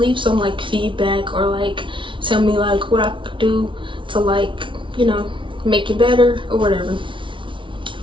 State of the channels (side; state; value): left; late; 0.25 ms